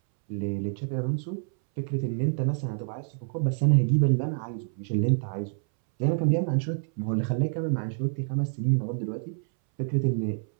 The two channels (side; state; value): left; silent; 60 dB below the other